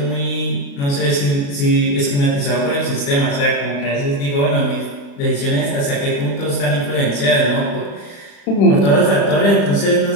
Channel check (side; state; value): right; late; 35 ms